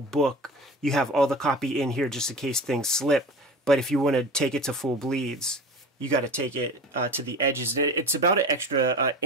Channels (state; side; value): normal; both; correlation 0.34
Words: You have all the copy in here just in case things slip, but if you want to take it to full bleeds, you got to take it to the edges. And it's about an extra